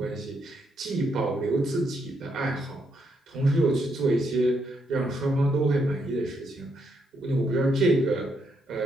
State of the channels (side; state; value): both; normal; correlation 0.77